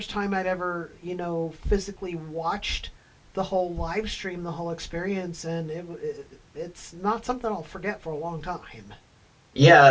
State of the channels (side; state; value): both; identical; correlation 1.00